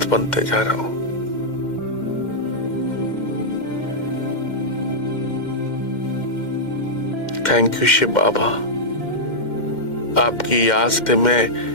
बनते जा रहा हूं। थैंक यू शिव बाबा। आपकी याद से मैं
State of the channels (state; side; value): late; right; 2.1 ms